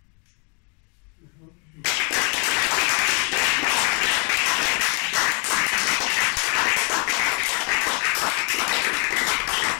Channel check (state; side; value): quieter; right; 36.6 dB